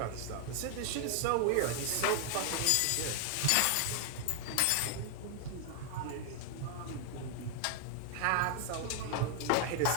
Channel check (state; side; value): different; both; correlation 0.00